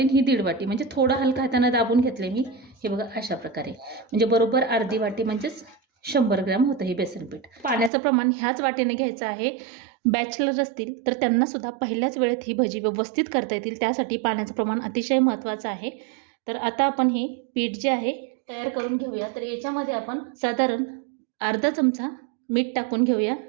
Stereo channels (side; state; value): left; drops out; at 7.9 s